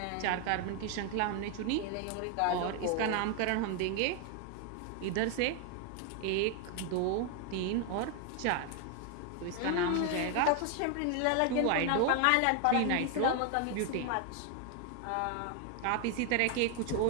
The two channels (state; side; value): different; both; correlation 0.01